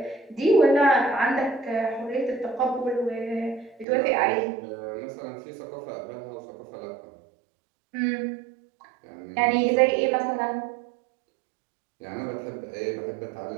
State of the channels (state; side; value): drops out; left; at 3.9 s